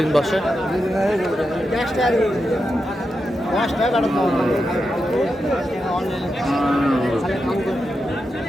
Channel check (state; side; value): normal; both; correlation 0.88